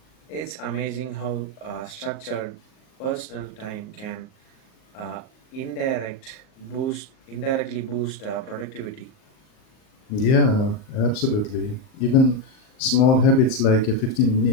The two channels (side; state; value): right; late; 38 ms